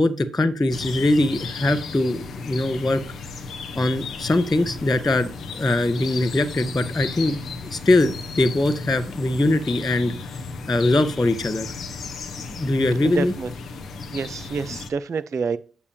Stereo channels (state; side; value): normal; both; correlation 0.89